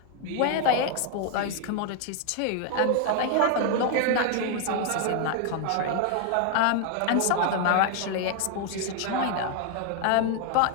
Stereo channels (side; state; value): both; different; correlation 0.00